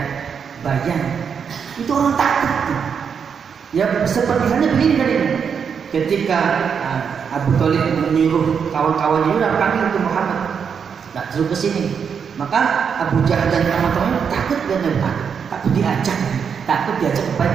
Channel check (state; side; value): quieter; left; 6.8 dB